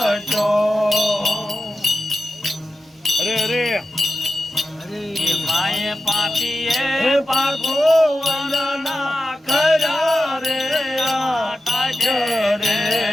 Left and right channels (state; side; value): normal; both; correlation 0.92